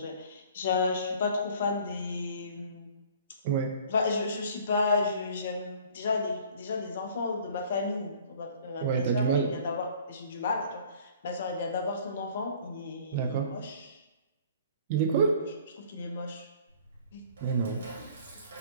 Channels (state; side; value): inverted; both; correlation -0.51